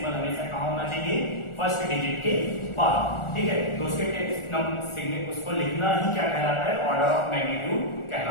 हमेशा कहाँ होना चाहिए, फर्स्ट डिजिट के बाद। ठीक है, तो उसके उसको लिखना ही क्या कहलाता है, ऑर्डर ऑफ मैग्नीट्यूड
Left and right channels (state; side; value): late; right; 1.4 ms